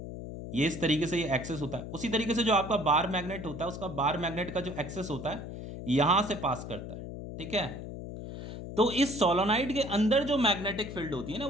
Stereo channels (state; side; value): noise; left; hum, 9 dB below the sound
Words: ये इस तरीके से ये एक्सेस होता है। उसी तरीके से जो आपका बार मैग्नेट होता है उसका बार मैग्नेट का जो एक्सेस होता है यहां से पास करता है। ठीक है, तो इस सोलोनाइड के अंदर जो मैग्नेटिक फील्ड होती है ना